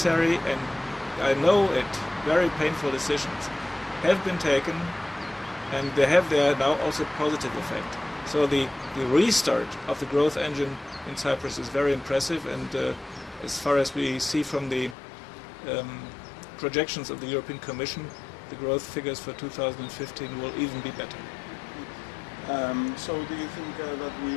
and I know it, very painful decisions have been taken, and they have there now also positive effect. So the restart of the growth engine in Cyprus is very impressive, and as far as we see from the projections of the European Commission, the growth figures for 2015 will even be better. So do you think that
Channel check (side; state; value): right; drops out; at 15.0 s